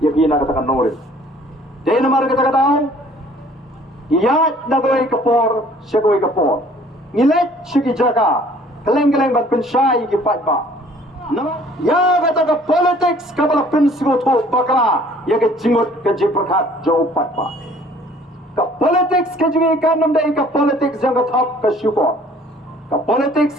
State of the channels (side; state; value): both; normal; correlation 0.55